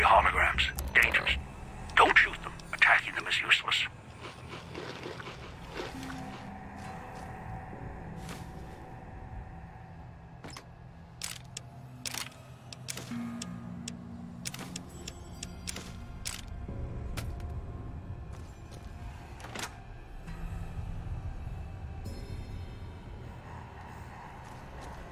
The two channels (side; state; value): both; identical; correlation 1.00